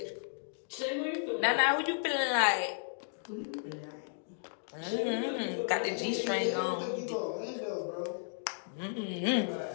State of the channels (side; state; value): right; silent; digital silence